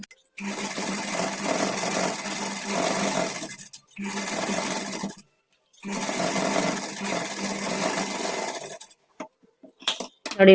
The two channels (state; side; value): identical; both; correlation 1.00